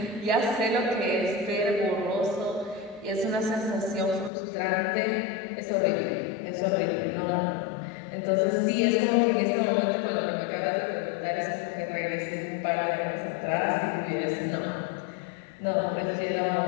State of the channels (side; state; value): right; drops out; at 4.3 s